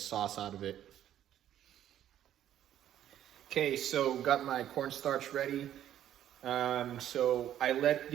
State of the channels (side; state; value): left; quieter; 11.3 dB